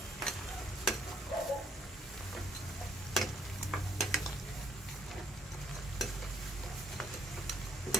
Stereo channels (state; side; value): normal; both; correlation 0.66